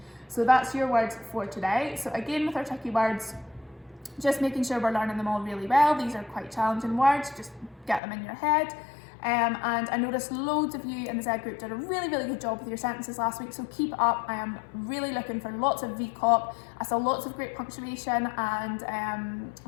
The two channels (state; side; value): drops out; right; at 8.0 s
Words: So that's your words for today. So again, with our tricky words, just making sure we're learning them all really well. These are quite challenging words, just get them in your head. And I noticed loads of you in the Z group did a really good job with your sentences last week, so keep it up. I am really looking for lots of VCOP. I saw lots of great punctuation and